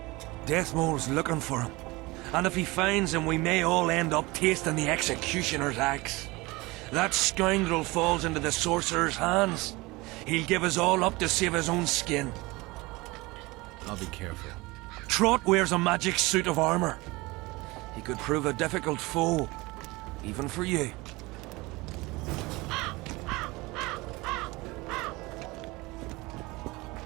Deathmole's looking for him. And if he finds him, we may all end up tasting the executioner's axe. That scoundrel falls into the sorcerer's hands. He'll give us all up to save his own skin. I'll be careful. Trott wears a magic suit of armor. He could prove a difficult foe, even for you.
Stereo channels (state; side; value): quieter; left; 22.6 dB